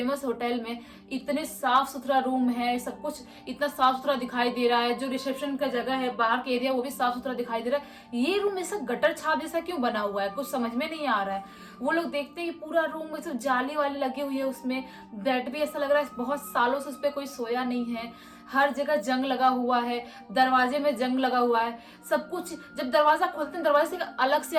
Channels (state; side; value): identical; both; correlation 1.00